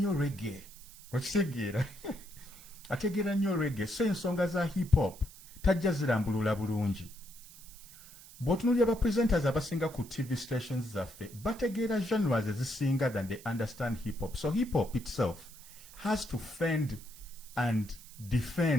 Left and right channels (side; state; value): right; noise; hiss, 19 dB below the sound